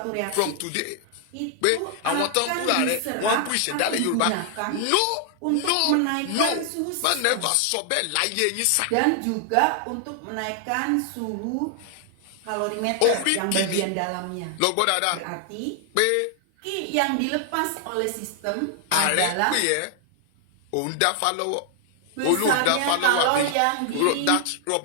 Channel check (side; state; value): both; different; correlation 0.00